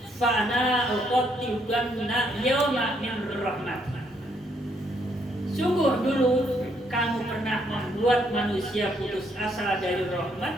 fa ana uqattibanna yawma min rahmatin. Sungguh dulu kamu pernah membuat manusia putus asa dari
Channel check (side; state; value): both; normal; correlation 0.72